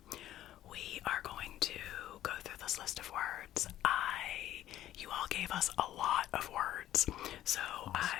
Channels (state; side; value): quieter; right; 13.0 dB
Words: we are going to go through this list of words. You all gave us a lot of words, so awesome.